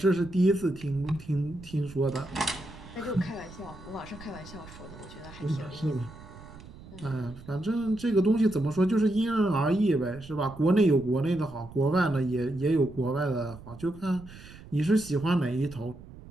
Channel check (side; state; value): right; noise; rumble, 17 dB below the sound